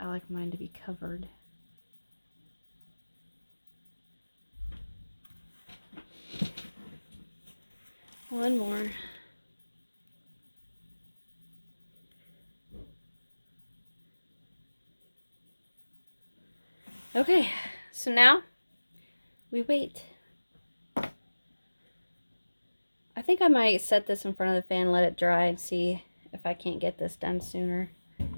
like mine to be covered. One more. Okay, so now we wait. I think I might set this in front of the fan, let it dry, and see if I can't get this done sooner.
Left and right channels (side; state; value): both; inverted; correlation -1.00